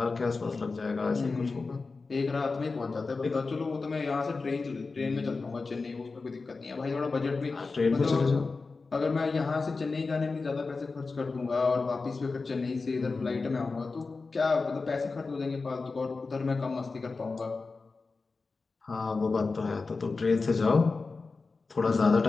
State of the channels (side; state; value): right; quieter; 4.1 dB